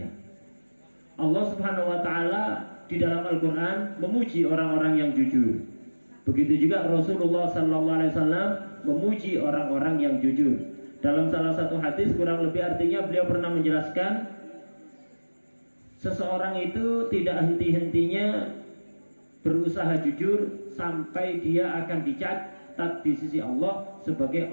Allah Subhanahu wa Ta'ala di dalam Al-Quran memuji orang-orang yang jujur. Begitu juga Rasulullah SAW memuji orang-orang yang jujur. Dalam salah satu hadis kurang lebih artinya beliau pernah menjelaskan, seseorang itu tidak henti-hentinya berusaha jujur sampai dia akan dicatat di sisi Allah sebagai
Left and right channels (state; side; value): inverted; both; correlation -1.00